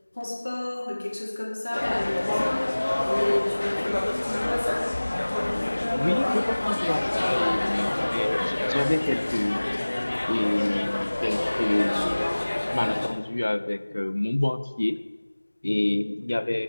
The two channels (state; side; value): inverted; both; correlation -1.00